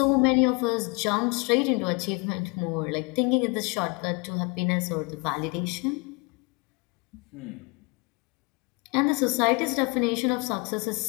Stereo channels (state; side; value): quieter; right; 30.0 dB